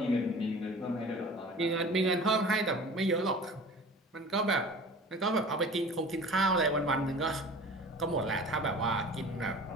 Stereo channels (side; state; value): both; normal; correlation 0.41